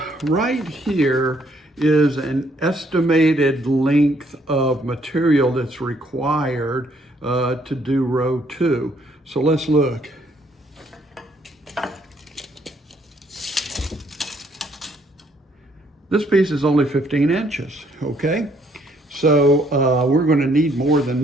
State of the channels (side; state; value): both; normal; correlation 0.68